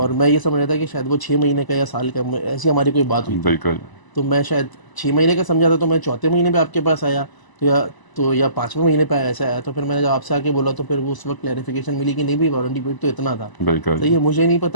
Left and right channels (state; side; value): late; right; 1.0 ms